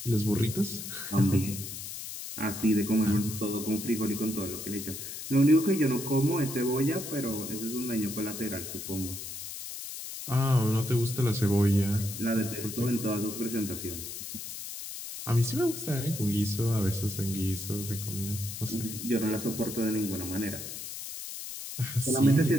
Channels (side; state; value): left; noise; hiss, 8 dB below the sound